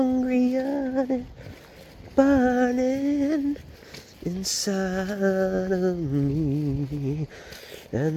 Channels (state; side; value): identical; both; correlation 1.00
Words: yearning burning inside of me,